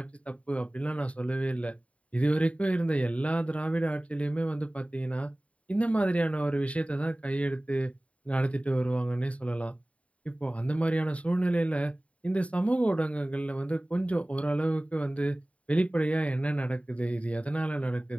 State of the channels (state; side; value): late; right; 0.065 ms